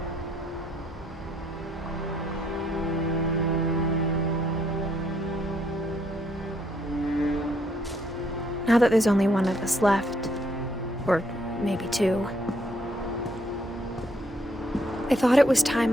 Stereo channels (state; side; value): normal; both; correlation 0.70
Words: Now that there's only one of us left, or maybe two, I thought it was time